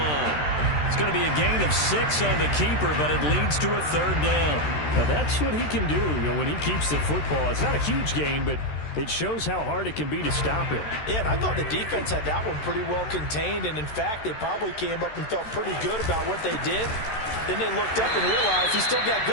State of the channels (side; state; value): right; late; 13 ms